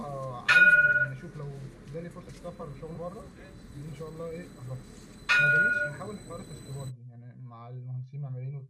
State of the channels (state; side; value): identical; both; correlation 1.00